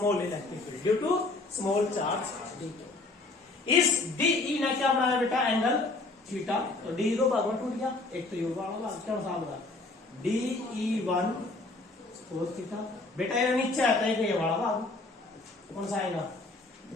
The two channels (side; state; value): right; quieter; 3.3 dB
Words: electric field due to small charge d. इस डीई ने क्या बनाया बेटा? Angle theta. तो डी दो भाग में टूट गया, एक तो ये वाला भाग क्या होगा? DE1 cos theta. बेटा ये नीचे आता है ये वाला भाग कौन सा आएगा?